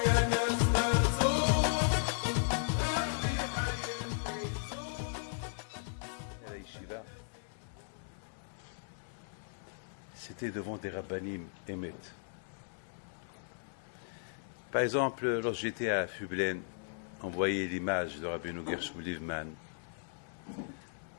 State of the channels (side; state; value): right; silent; 54 dB below the other